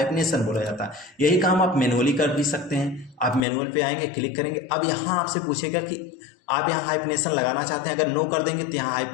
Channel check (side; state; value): right; drops out; at 3.5 s